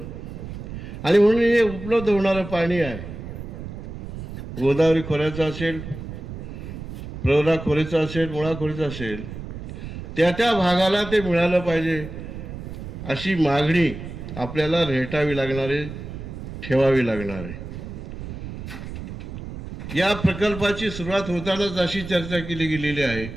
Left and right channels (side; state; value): right; noise; rumble, 10 dB below the sound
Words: आणि म्हणून हे उपलब्ध होणारं पाणी आहे, गोदावरी खोऱ्याचं असेल, प्रवरा खोऱ्याचं असेल, मुळा खोऱ्याचं असेल, त्या भागाला ते मिळालं पाहिजे अशी मागणी आपल्याला रेटावी लागणार आहे, ठेवावी लागणार आहे. या प्रकल्पाची सुरुवात होतानाच अशी चर्चा केली गेलेली आहे